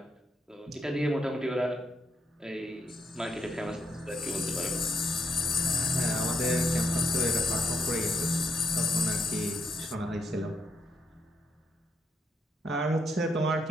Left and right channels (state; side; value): normal; both; correlation 0.76